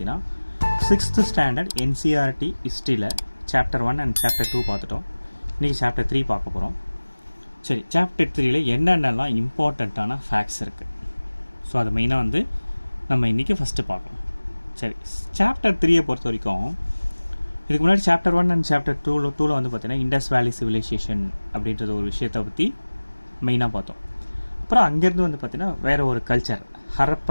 6th ஸ்டாண்டர்ட் என்சிஆர்டி ஹிஸ்ட்ரியில் சாப்டர் 1 அண்ட் சாப்டர் 2 பார்த்துட்டோம். இன்றைக்கி சாப்டர் 3 பார்க்க போகிறோம். சரி, சாப்டர் 3ல் என்னென்னலாம் இம்பார்ட்டண்ட்டான ஃபேக்ட்ஸ் இருக்குது, ஸோ அதை மெயினாக நம்ம இன்றைக்கி ஃபஸ்ட்டு பார்க்கணும். சரி, சாப்டர் 3 பொறுத்த வரைக்கும் இதுக்கு முன்னாடி சாப்டர் 1 அண்ட் சாப்டர் 2ல் பார்த்தீங்கன்னா இண்டஸ் வேலி சிவிலைசேஷன் அப்படின்றது ஒரு விஷயத்தை பற்றி மெயினாக பார்த்தோம். அப்புறம் அங்கேருந்து பார்த்தீங்கன்னா வேறு ஒரு culture,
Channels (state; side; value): inverted; both; correlation -1.00